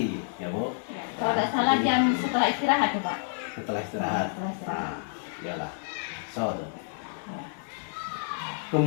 ya Bu. Ya, kalau tidak salah jam setelah istirahat tuh, Pak. Setelah istirahat. Setelah istirahat. Iyalah. So,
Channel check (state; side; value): silent; right; 59 dB below the other